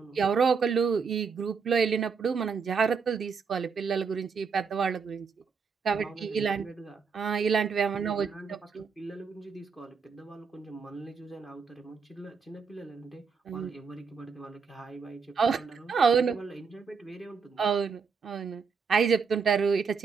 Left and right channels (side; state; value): left; quieter; 5.6 dB